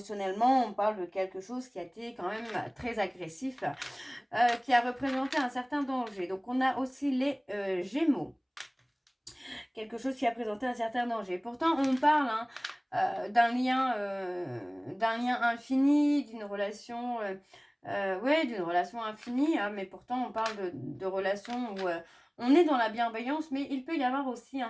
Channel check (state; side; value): identical; both; correlation 1.00